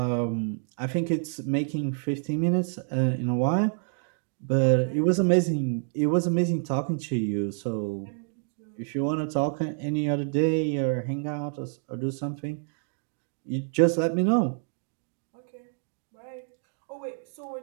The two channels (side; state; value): left; silent; 59 dB below the other